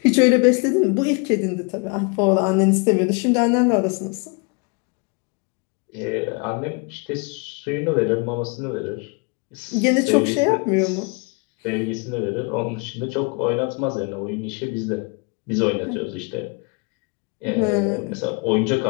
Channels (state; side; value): quieter; right; 32.7 dB